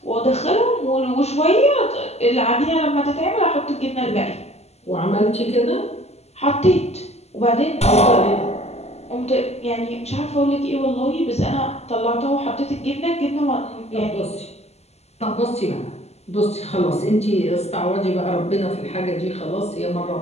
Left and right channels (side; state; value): right; late; 0.31 ms